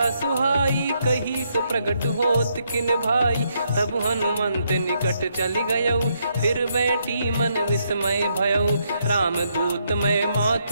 सुहाई। कही सो प्रगट होत किन भाई, तब हनुमंत निकट चली गयऊ। फिर बैठी मन विस्मय भयऊ, राम दूत मैं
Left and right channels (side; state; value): both; inverted; correlation -0.76